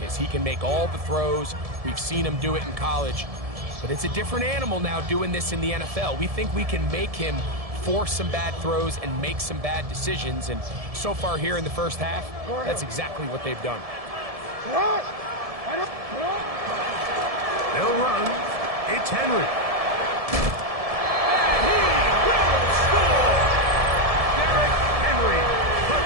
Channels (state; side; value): late; left; 1.7 ms